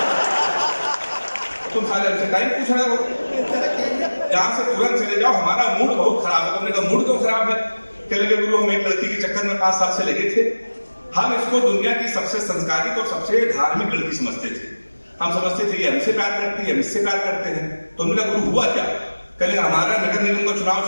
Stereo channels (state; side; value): inverted; both; correlation -1.00